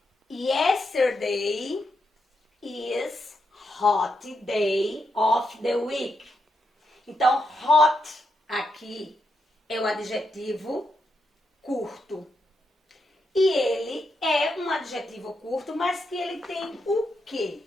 Yesterday is hot day of the week. Então, hot aqui é o adjetivo curto. E ele é um adjetivo curto, mas que ele tem o quê?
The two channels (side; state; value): both; normal; correlation 0.82